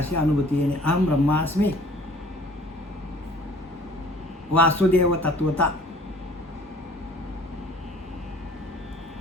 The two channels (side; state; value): both; normal; correlation 0.52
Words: अनुभूती येणे. अहम ब्रह्मास्मी. वासुदेव तत्वता.